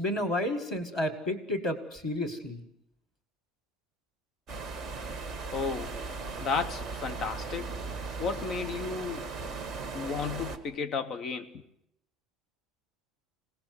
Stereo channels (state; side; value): normal; both; correlation 0.42